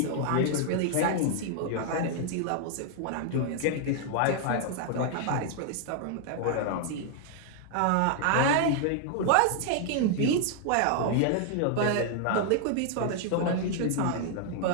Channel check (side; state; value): both; different; correlation 0.00